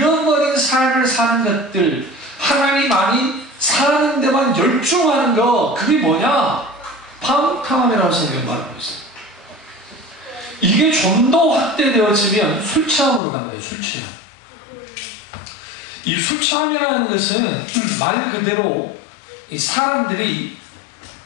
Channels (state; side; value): drops out; right; at 13.2 s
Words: 삶을 사는 것들, 하나님 아닌 사는 데만 열중하는 거, 그게 뭐냐? 방탕함이라고 성경이 말하고 있어요. 이게 좀 더 확대되어지면 술 취함으로 간 거예요. 술 취함. 이 술 취함이라는 것은 말 그대로 이 사람들이